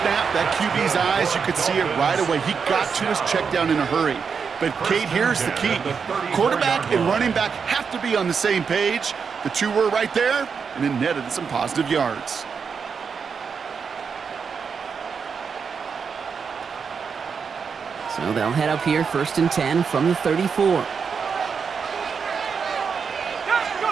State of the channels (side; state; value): left; quieter; 6.0 dB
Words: that QB's eyes, you could see it right away. He got to his check down in a hurry. But, Kate, here's the key. Quarterback and running back have to be on the same page. The two were right there, and it netted some positive yards. So they'll head up here, 1st and 10 from the 34.